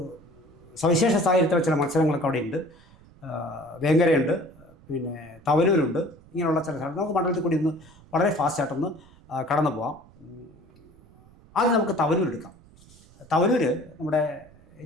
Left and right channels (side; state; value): right; noise; rumble, 25 dB below the sound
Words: സവിശേഷ സാഹചര്യത്തിലുള്ള ചില മത്സരങ്ങളൊക്കെ അവിടെ ഉണ്ട്. വേങ്ങരയുണ്ട്, പിന്നെ തവനൂരുണ്ട്. ഇങ്ങനെയുള്ള ചില സ്ഥലം നമുക്ക് മണ്ഡലത്തിൽ കൂടി ഒന്ന് വളരെ ഫാസ്റ്റായിട്ടൊന്ന് കടന്നു പോകാം. ആദ്യം നമുക്ക് തവനൂർ എടുക്കാം. തവനൂർ നമ്മുടെ